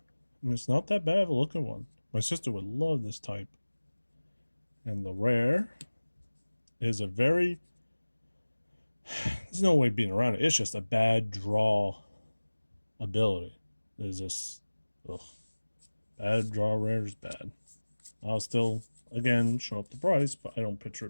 And it's not that bad of a looking one. My sister would love this type. And the rare is a very... There's no way being around it. It's just a bad draw ability. There's just... Ugh. Bad draw rare is bad. I'll still, again, show up the price, but I don't picture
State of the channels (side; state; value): both; inverted; correlation -1.00